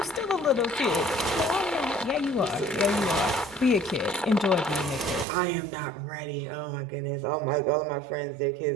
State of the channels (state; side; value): drops out; left; at 5.2 s